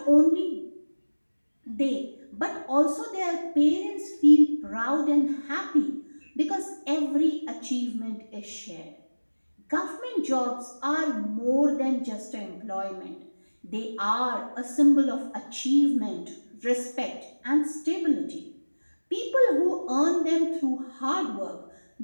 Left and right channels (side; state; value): both; inverted; correlation -1.00